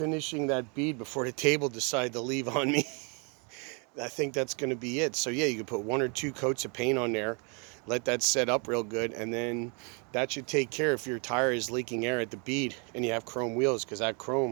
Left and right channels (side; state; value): left; quieter; 35.6 dB